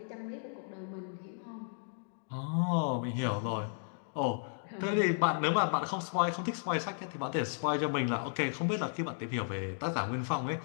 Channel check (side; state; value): right; silent; digital silence